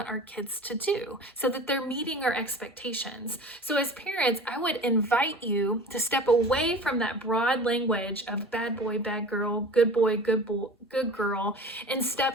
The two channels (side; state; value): both; normal; correlation 0.38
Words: our kids to do so that they're meeting our expectations. So as parents, I would invite you to step away from that broad language of bad boy, bad girl, good boy, good girl, and